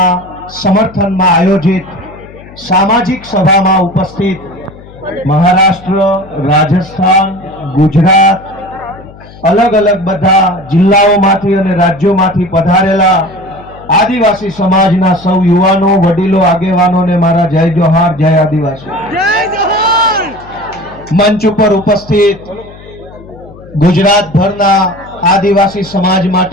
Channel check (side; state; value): left; noise; hum, 20 dB below the sound